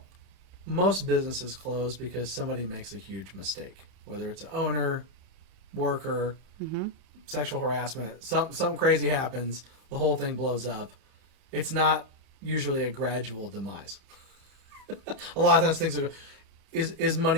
most businesses close because somebody makes a huge mistake, whether it's an owner, worker, sexual harassment, something crazy happens, the whole thing blows up. It's not usually a gradual demise. A lot of times things are, is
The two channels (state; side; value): late; left; 31 ms